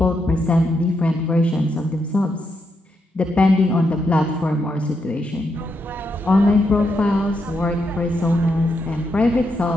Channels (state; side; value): normal; both; correlation 0.81